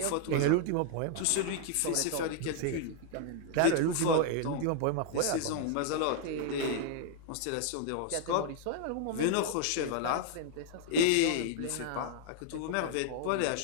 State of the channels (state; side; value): different; both; correlation 0.00